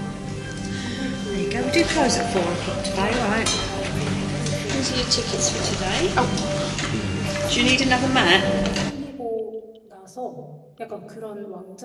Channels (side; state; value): both; identical; correlation 1.00